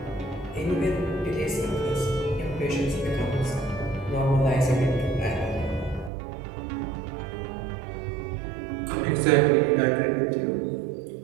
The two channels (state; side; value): drops out; left; at 6.1 s